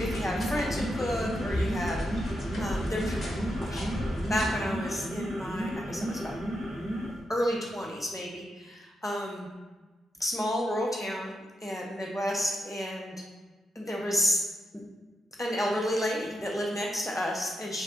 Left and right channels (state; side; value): normal; both; correlation 0.85